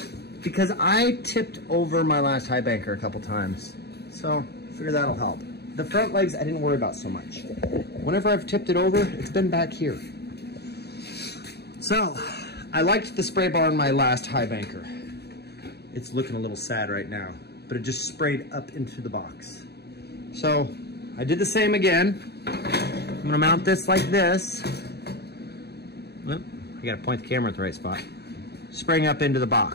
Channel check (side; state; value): right; late; 0.48 ms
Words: because I tipped over my last Highbanker a couple times. So I figure that'll help. The front legs I didn't worry about so much. Whenever I've tipped it over, it's been back here. So, I liked the spray bar on my last Highbanker. It's looking a little sad right now, but it just sprayed up into the box. So, I did the same again. I'm gonna mount this like this. Oop, I gotta point the camera at the right spot. Spraying up into the